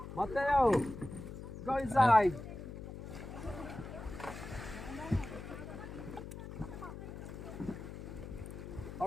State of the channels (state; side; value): noise; left; hum, 10 dB below the sound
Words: Mateo, go inside.